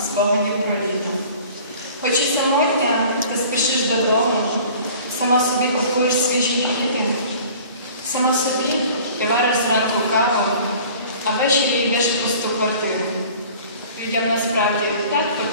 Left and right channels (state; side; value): inverted; both; correlation -0.47